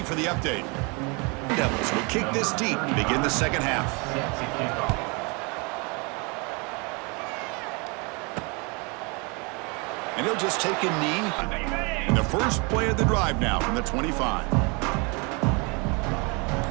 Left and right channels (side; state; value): left; quieter; 30.6 dB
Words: for the update. Devils will kick this deep to begin the second half. And he'll just take a knee in the first play of the drive now from the 25.